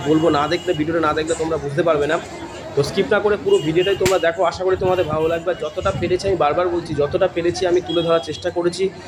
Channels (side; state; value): both; identical; correlation 1.00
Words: বলবো, না দেখলে ভিডিওটা না দেখলে তোমরা বুঝতে পারবে না। তো স্কিপ না করে পুরো ভিডিওটাই তোমরা দেখো, আশা করি তোমাদের ভালো লাগবে। যতটা পেরেছি, আমি বারবার বলছি, যতটা পেরেছি আমি তুলে ধরার চেষ্টা করেছি